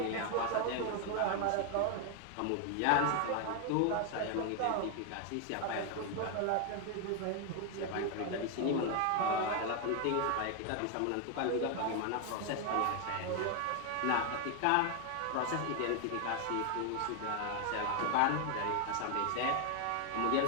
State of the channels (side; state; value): both; different; correlation 0.00